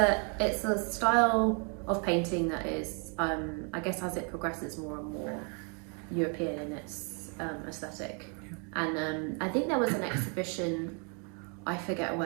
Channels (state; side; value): quieter; left; 37.6 dB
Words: a style of painting that is, I guess, as it progresses more and more European in its aesthetic. Yeah. And I think there was an exhibition, I forget